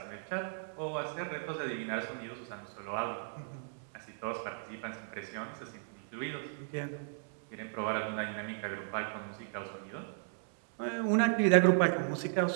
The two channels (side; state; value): left; silent; digital silence